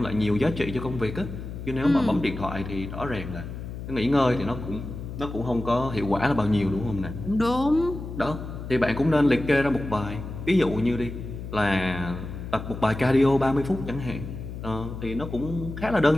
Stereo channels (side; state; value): left; noise; hum, 9 dB below the sound